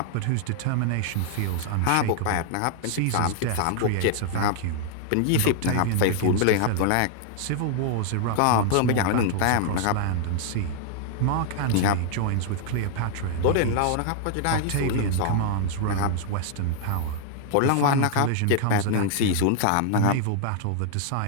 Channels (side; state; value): both; different; correlation 0.00